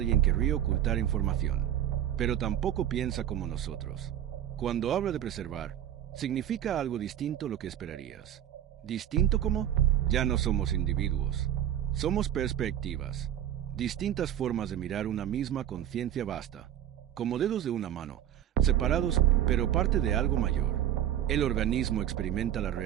querría ocultar información. Pero tampoco piensa como nosotros. Cuando habla de preservar, significa algo distinto a lo que esperarías. ¿Distinto cómo? Ya no somos individuos. Somos perspectivas. Distintas formas de mirar una misma conciencia vasta. Como dedos de una mano, separados pero parte de algo mayor. El organismo experimenta la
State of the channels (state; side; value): quieter; left; 11.0 dB